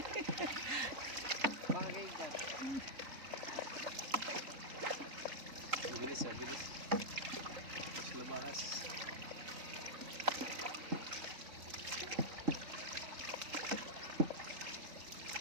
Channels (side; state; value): left; late; 3.8 ms